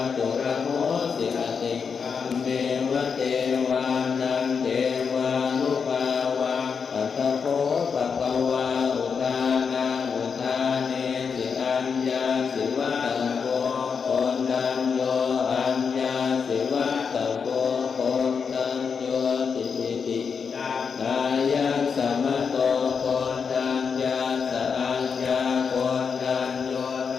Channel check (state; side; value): quieter; right; 6.0 dB